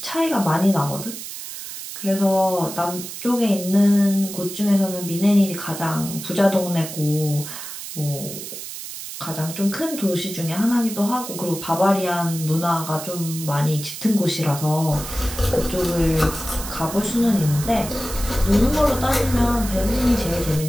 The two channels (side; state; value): right; noise; hiss, 10 dB below the sound